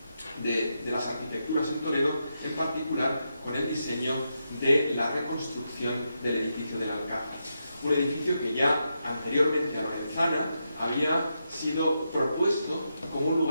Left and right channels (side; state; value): both; inverted; correlation -0.85